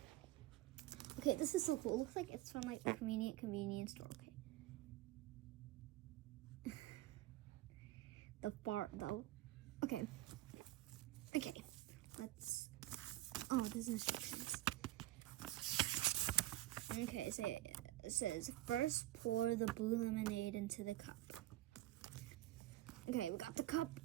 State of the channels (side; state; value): left; quieter; 16.2 dB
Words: Okay, this is so cool. It looks like it's from like a convenience store. Okay. The fart though. Okay. Okay. Let's. Oh, there's instructions. Okay, so it says first pour the blue lemonade into the cup. Okay, we got the cup.